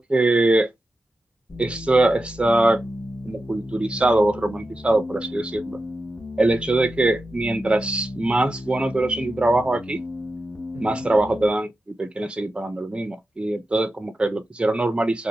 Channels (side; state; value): both; normal; correlation 0.91